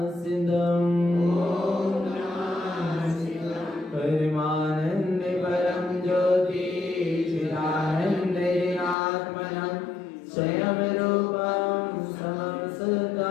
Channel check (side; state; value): right; drops out; at 9.0 s